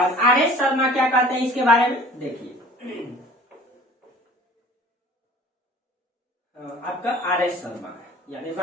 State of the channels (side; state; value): both; normal; correlation 0.47